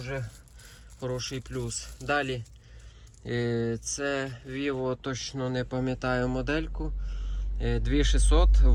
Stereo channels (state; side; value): identical; both; correlation 1.00